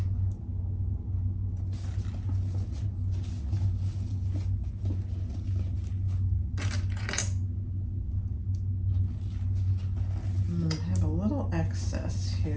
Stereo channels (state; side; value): identical; both; correlation 1.00